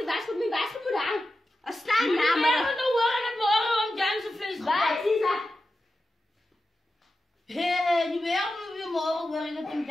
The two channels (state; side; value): normal; both; correlation 0.92